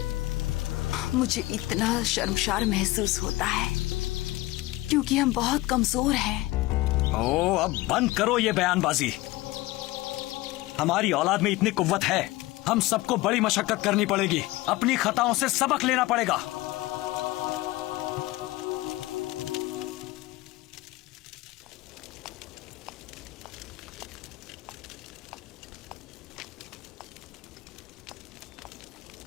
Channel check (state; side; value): quieter; right; 18.7 dB